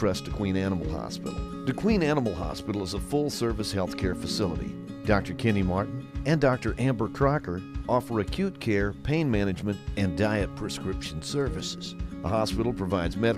DeQueen Animal Hospital. DeQueen Animal Hospital is a full-service healthcare facility. Dr. Kenny Martin and Dr. Amber Crocker offer acute care, pain management, and diet prescription services. The hospital provides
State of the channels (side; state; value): both; identical; correlation 1.00